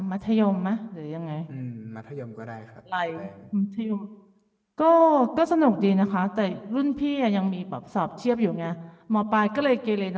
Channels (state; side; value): identical; both; correlation 1.00